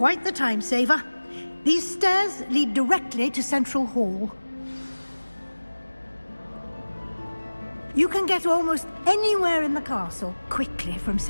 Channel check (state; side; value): inverted; both; correlation -1.00